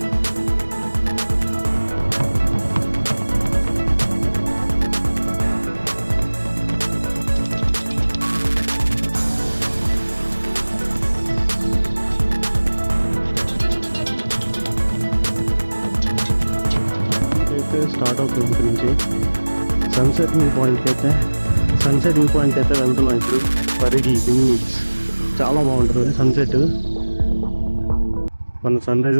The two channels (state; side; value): inverted; both; correlation -1.00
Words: స్టార్ట్ అవుతుంది ఇక్కడ నుంచి సన్సెట్ వ్యూ పాయింట్కి అయితే వెళ్తున్నాం ఇప్పుడు. పరిగి బీచ్ చాలా బాగుంటుంది సన్సెట్. మనం సన్ రైజ్